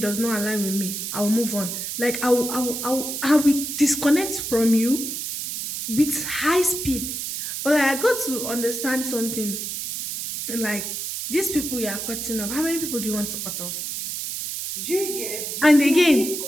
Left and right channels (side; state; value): right; noise; hiss, 5 dB below the sound